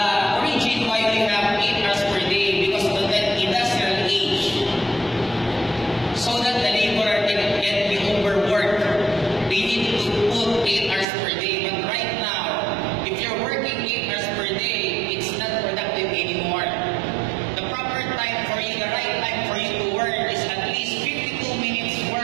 origin why we have 8 hours per day because of the industrial age, so that the laborer can get the overwork. They need to put 8 hours per day. But right now, if you're working 8 hours per day, it's not productive anymore. The proper time for you, the right time for you to work is at least 52 minutes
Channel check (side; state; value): left; drops out; at 11.1 s